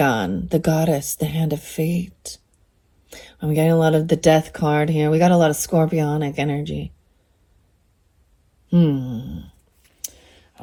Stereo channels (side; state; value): both; identical; correlation 1.00